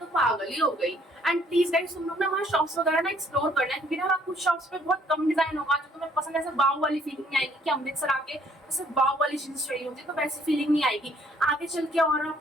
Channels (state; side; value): normal; both; correlation 0.63